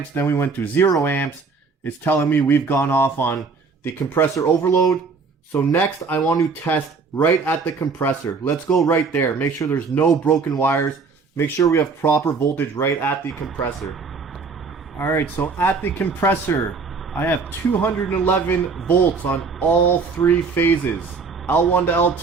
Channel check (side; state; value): left; quieter; 4.7 dB